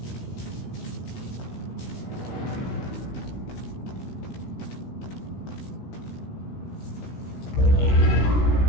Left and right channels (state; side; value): late; right; 16 ms